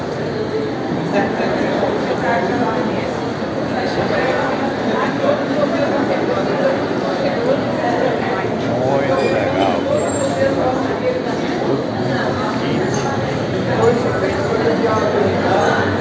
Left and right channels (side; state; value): both; identical; correlation 1.00